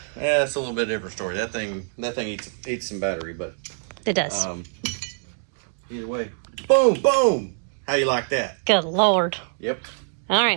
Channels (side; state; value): left; silent; digital silence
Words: it's a little bit different story. That thing eats some battery, but it does. Either way, boom, boom. How you like that? Good Lord. Yep. All